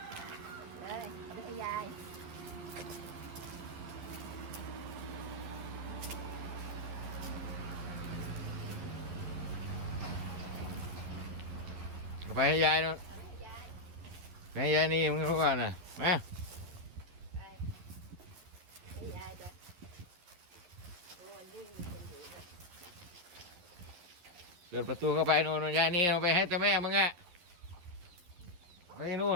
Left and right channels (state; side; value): late; left; 12 ms